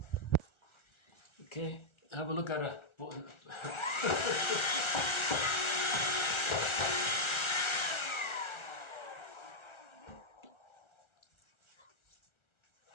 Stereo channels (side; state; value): right; late; 1.4 ms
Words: Okay, have a look at a